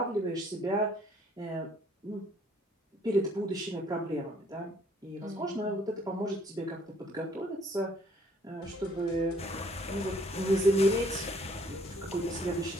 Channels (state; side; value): normal; both; correlation 0.62